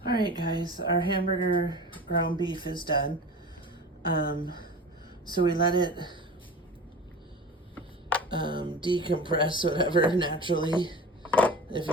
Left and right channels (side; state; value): both; normal; correlation 0.35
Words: All right, guys, our hamburger ground beef is done. So we let it decompress, whatever, naturally. If